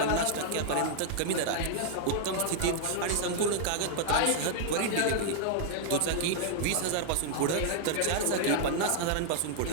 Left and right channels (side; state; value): both; different; correlation 0.00